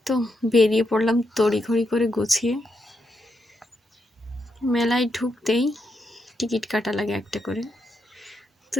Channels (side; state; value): both; normal; correlation 0.82